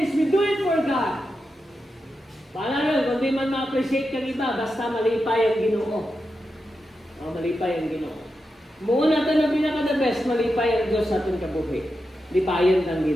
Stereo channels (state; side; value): normal; both; correlation 0.88